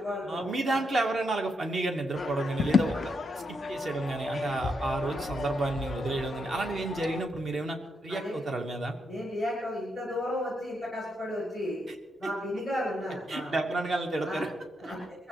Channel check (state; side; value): normal; both; correlation 0.81